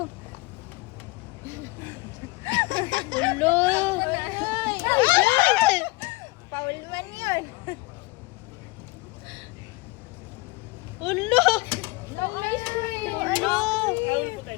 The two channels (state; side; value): quieter; right; 23.9 dB